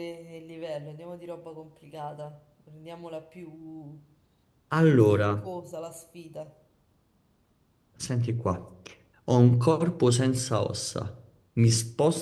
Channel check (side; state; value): both; identical; correlation 1.00